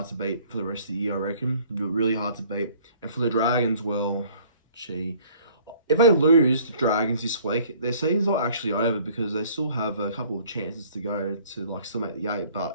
to beat for the rest of the year, I reckon. Really hard to beat. And for the Dragons, well, if they lose the Dragons this week, their season's not actually over because they still have a couple of chances to go to still make the 8,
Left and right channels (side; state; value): both; inverted; correlation -0.55